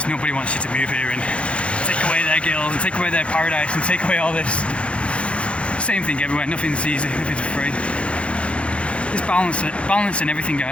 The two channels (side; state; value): right; late; 0.060 ms